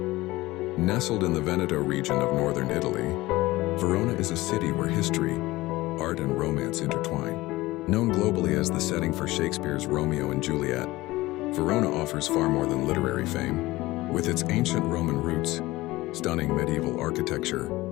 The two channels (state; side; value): quieter; right; 19.1 dB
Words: Nestled in the Veneto region of northern Italy, Verona is a city where history, art, and romance intertwine. Known globally as the setting for Shakespeare's Romeo and Juliet, Verona offers far more than literary fame. With its ancient Roman roots, stunning medieval architecture,